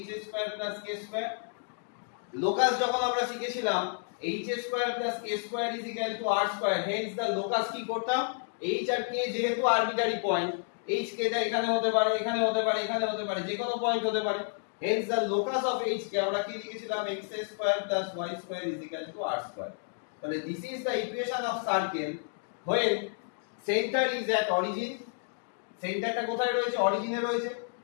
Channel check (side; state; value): right; silent; 57 dB below the other